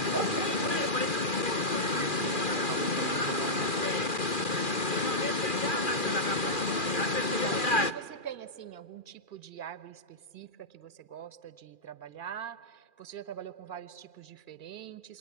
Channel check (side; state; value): right; late; 2.4 ms